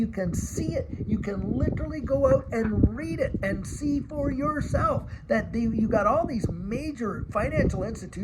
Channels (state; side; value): identical; both; correlation 1.00